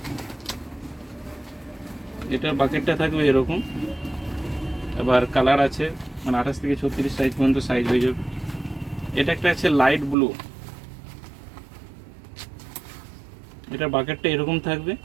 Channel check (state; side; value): drops out; left; at 10.2 s